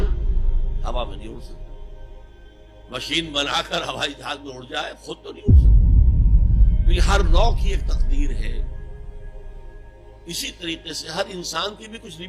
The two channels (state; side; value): identical; both; correlation 1.00